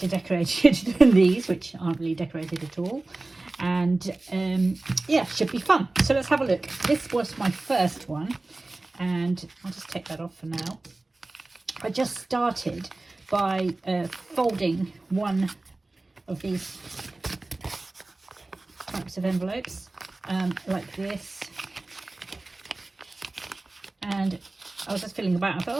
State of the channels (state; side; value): quieter; left; 3.0 dB